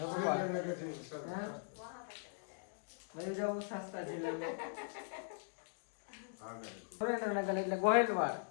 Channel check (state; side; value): silent; right; digital silence